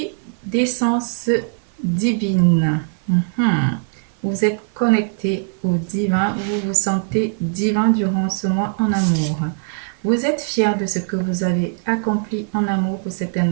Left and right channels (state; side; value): silent; left; 55 dB below the other